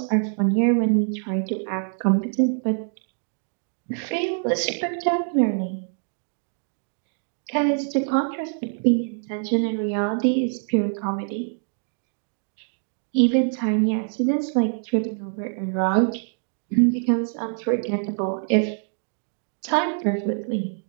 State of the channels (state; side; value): silent; left; 60 dB below the other